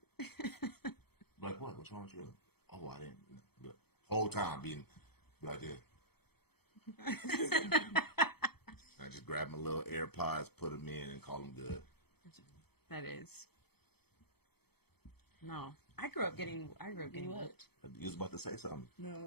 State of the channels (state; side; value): late; right; 0.97 ms